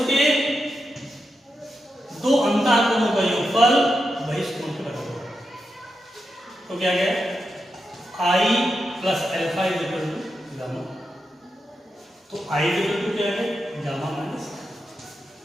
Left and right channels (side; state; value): both; normal; correlation 0.87